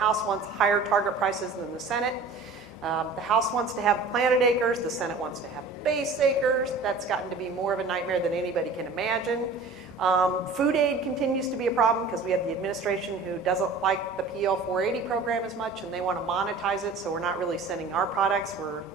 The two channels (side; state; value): left; quieter; 3.9 dB